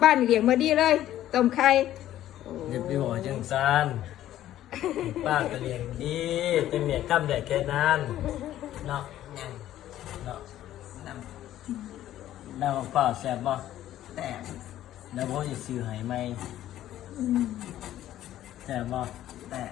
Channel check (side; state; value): right; quieter; 12.9 dB